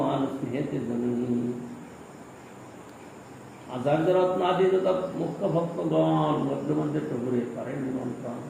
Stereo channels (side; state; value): both; identical; correlation 1.00